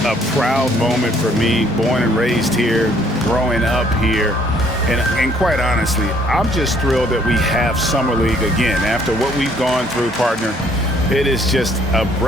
a proud moment for me, born and raised here, growing up here. And quite honestly, I'm just thrilled that we have Summer League again. After what we've gone through, partner, it is just a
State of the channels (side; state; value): both; normal; correlation 0.63